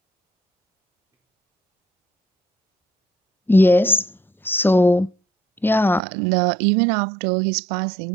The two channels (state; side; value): drops out; left; at 6.0 s